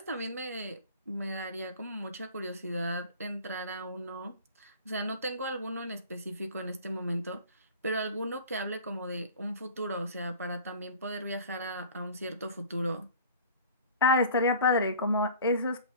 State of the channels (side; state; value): both; inverted; correlation -0.42